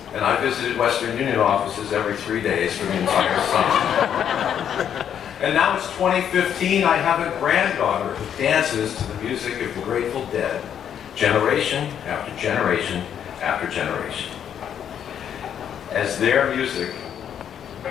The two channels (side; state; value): right; quieter; 9.0 dB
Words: and I visited Western Union offices every 3 days for the entire summer. And now it's 2015, I have a granddaughter who dances to the music of the Grateful Dead, generation after generation after generation. As their music